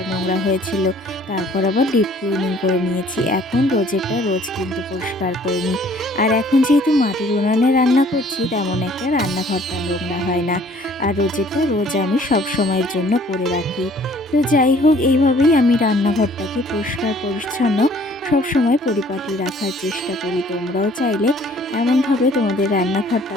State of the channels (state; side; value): normal; both; correlation 0.56